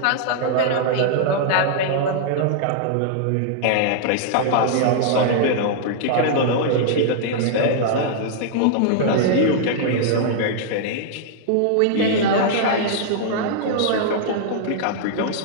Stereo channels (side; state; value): both; different; correlation -0.01